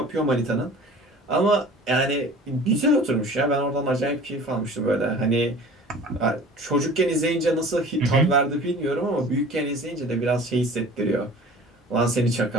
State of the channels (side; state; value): both; normal; correlation 0.43